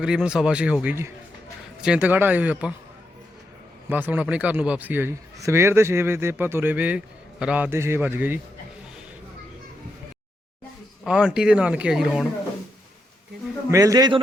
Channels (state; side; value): normal; both; correlation 0.83